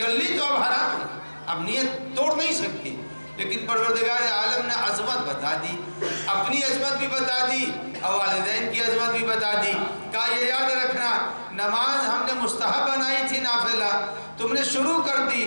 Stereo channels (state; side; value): inverted; both; correlation -1.00